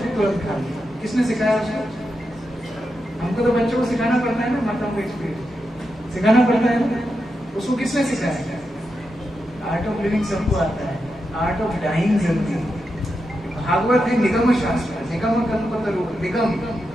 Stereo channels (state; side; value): normal; both; correlation 0.87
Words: तुरंत खा लिया। किसने सिखाया उसको? हमको तो बच्चों को सिखाना पड़ता है ना, माताओं को एक्सपीरियंस सिखाना पड़ता है ना, उसको किसने सिखाया? आर्ट ऑफ लिविंग सबको आता है, आर्ट ऑफ डाइंग जरूरी है। भागवत है निगम शास्त्र, निगम कल्पतरु, निगम,